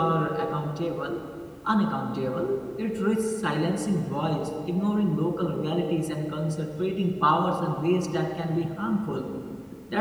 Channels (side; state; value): both; identical; correlation 1.00